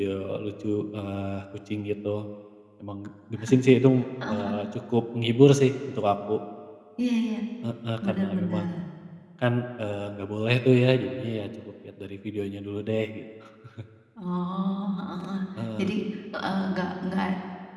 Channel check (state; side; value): identical; both; correlation 1.00